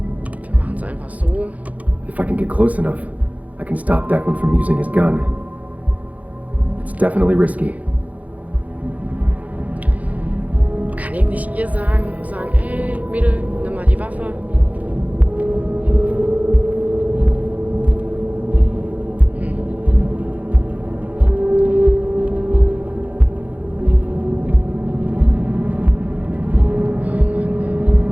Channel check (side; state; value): left; late; 0.073 ms